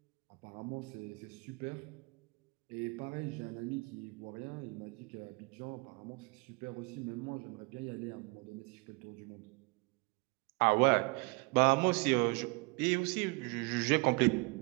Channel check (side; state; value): left; quieter; 28.3 dB